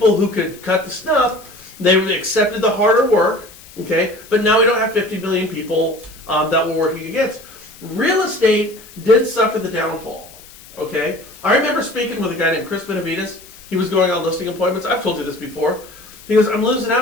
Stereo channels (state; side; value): noise; left; hiss, 21 dB below the sound